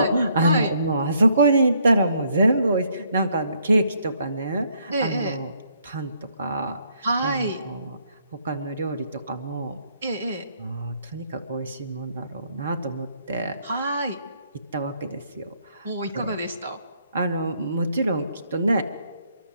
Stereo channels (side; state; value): both; inverted; correlation -0.69